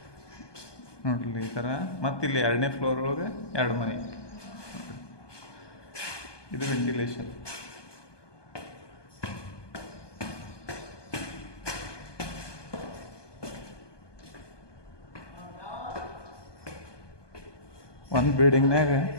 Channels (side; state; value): right; late; 1.2 ms